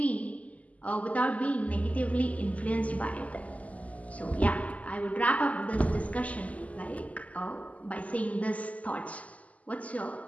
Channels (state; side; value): late; right; 0.070 ms